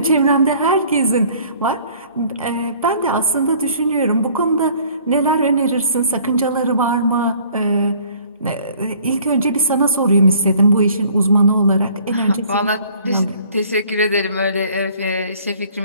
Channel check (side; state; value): both; inverted; correlation -0.55